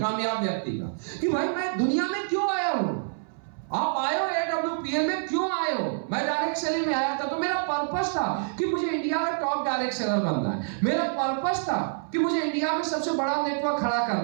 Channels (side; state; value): left; silent; 60 dB below the other